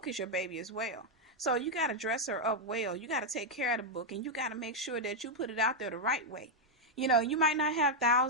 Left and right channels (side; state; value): both; normal; correlation -0.02